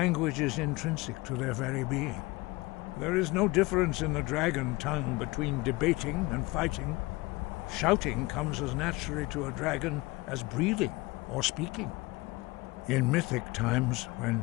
is intrinsic to their very being. There is no difference in the dragon tongue between debating and fighting. Shouting comes as naturally to a dragon as breathing or speaking. In mythic times,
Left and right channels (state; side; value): quieter; right; 22.5 dB